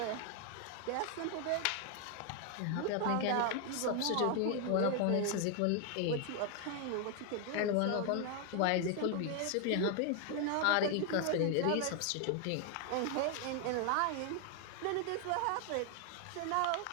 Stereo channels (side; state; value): both; different; correlation 0.00